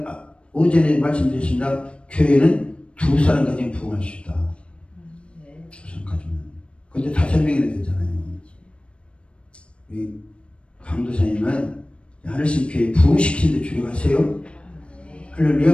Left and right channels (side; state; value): right; late; 0.059 ms